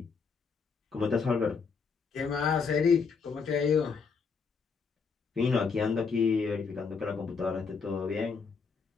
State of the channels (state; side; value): quieter; right; 5.3 dB